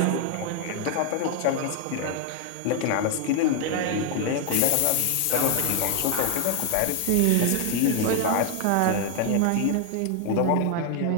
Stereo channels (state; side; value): different; both; correlation 0.00